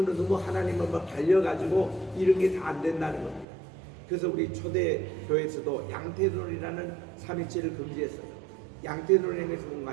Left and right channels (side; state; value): left; drops out; at 3.5 s